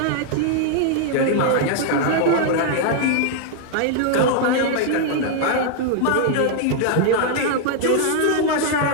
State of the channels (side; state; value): both; different; correlation 0.00